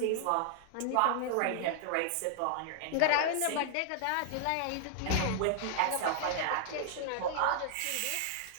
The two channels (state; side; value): different; both; correlation -0.01